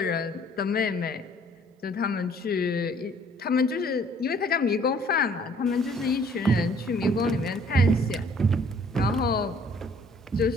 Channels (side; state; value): both; normal; correlation 0.58